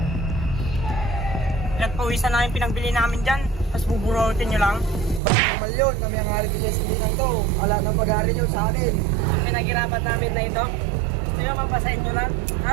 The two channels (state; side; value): drops out; left; at 5.2 s